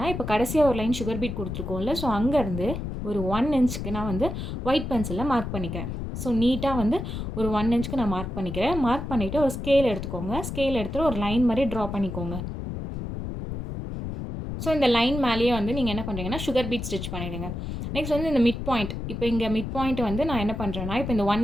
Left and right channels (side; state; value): left; noise; rumble, 6 dB below the sound